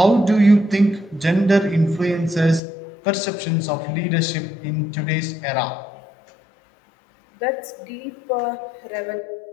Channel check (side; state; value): right; drops out; at 2.6 s